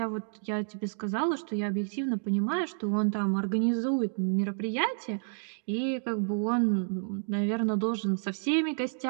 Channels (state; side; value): silent; left; digital silence